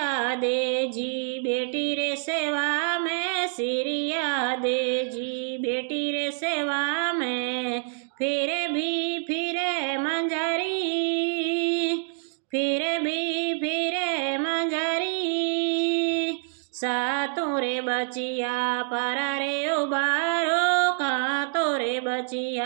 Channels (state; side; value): silent; left; digital silence